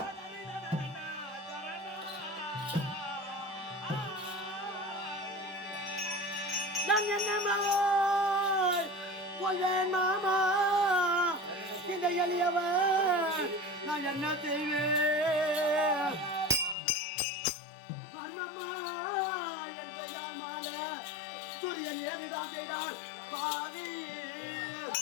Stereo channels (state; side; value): drops out; right; at 16.8 s